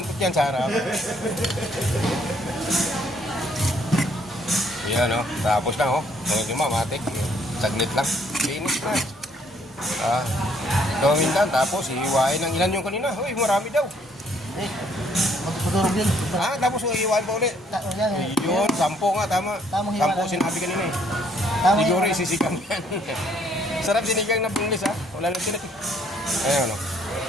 yan sa harap. Yan, no? Tapos na, oh. Mga matik. Saglit lang. Linis na. Gawin lang, tapos iiwain ng ilan yung kanina. Uy, marami daw. magdurog yun. Tapos iiwain pa ulit. Yan eh. Yun, 10 nga, tama. Tamang hiwa 10 lang. sinabi kanina eh. Tamang Siguro hiwa. isisigang yan. Sarap sinigang na bunglis, ha? Wala lang sinat. Ayun, no?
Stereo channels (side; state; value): both; normal; correlation 0.66